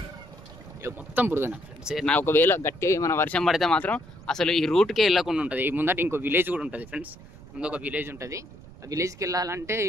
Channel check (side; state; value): right; noise; rumble, 19 dB below the sound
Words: మొత్తం బురదన ఫ్రెండ్స్. నా ఒకవేళ గట్టి మన వర్షం పడితే మాత్రం అసలు ఈ రూట్కే వెళ్ళకుండా ఉంటుంది. ఈ ముందట ఇంకో విలేజ్ కూడా ఉంటుంది ఫ్రెండ్స్. ముందు ఒక విలేజ్ ఉంటుంది. ఆ విలేజ్కి వెళ్ళాలంటే